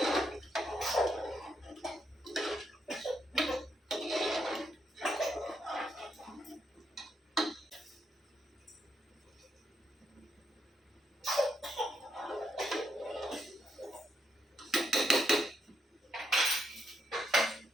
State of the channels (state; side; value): normal; both; correlation 0.79